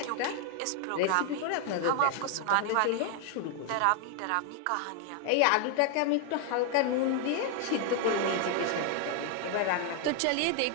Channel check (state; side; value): different; both; correlation 0.00